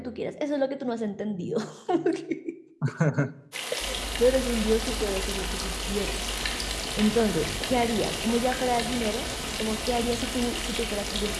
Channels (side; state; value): both; identical; correlation 1.00